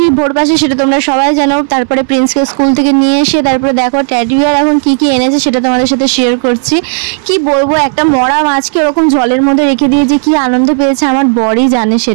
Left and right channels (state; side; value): silent; left; 73 dB below the other